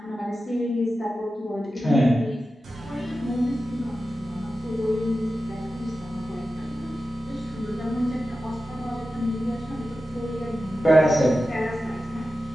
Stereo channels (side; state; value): both; normal; correlation 0.93